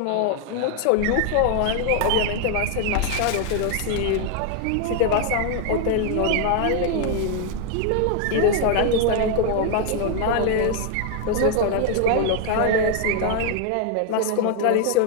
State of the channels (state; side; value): different; both; correlation 0.00